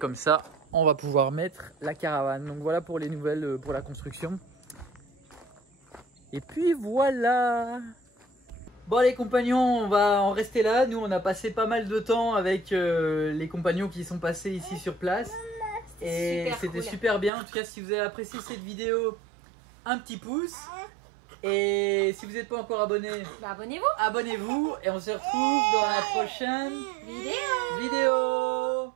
ça, on va pouvoir mettre la caravane. Donc voilà pour les nouvelles pour la construction. Et puis voilà. Bon les compagnons, on va en rester là. Nous on a passé pas mal de temps avec les compagnons qui sont passés ici sur place. Et c'était super bien. En tout cas, si vous avez apprécié cette vidéo, un petit pouce. Et si vous n'êtes pas encore abonné, abonnez-vous. Abonnez-vous et on se retrouve dans la prochaine vidéo.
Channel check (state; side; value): drops out; left; at 17.3 s